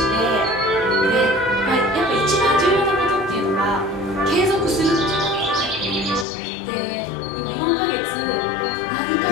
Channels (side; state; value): right; drops out; at 6.2 s